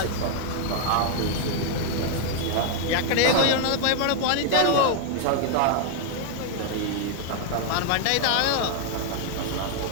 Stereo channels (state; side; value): different; both; correlation 0.00